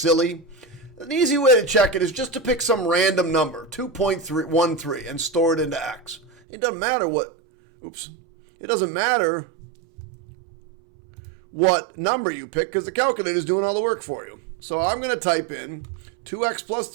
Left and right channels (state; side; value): drops out; left; at 6.3 s